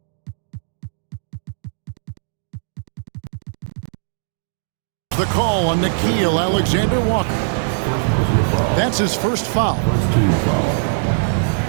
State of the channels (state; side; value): silent; left; 65 dB below the other